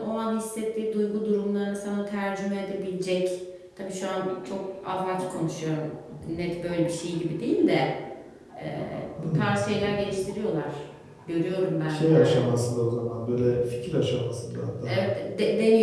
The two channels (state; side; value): identical; both; correlation 1.00